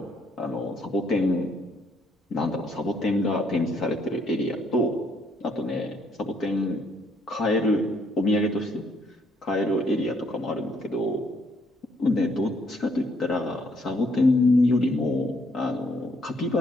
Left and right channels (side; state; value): both; normal; correlation 0.69